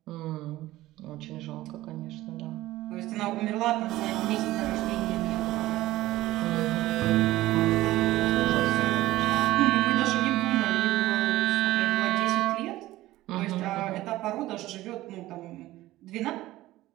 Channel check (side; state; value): left; quieter; 16.5 dB